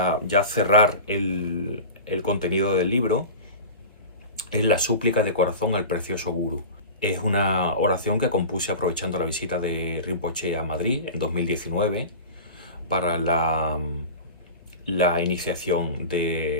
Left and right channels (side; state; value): both; inverted; correlation -0.32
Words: ya cerrar el contenido del libro, es la súplica de corazón al precioso Guru. Es una oración que compuse aprovechando la visita de Rinpoché a Madrid en 2019 para la iniciación